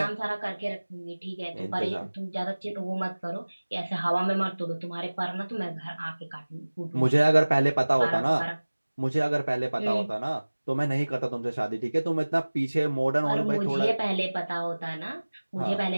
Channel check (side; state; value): both; inverted; correlation -1.00